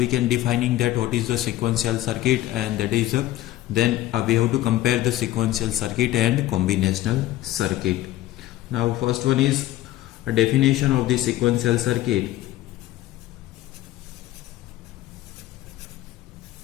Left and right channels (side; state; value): right; quieter; 15.2 dB